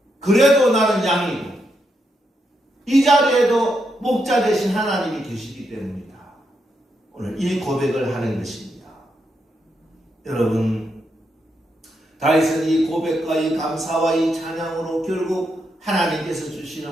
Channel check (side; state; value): both; normal; correlation 0.81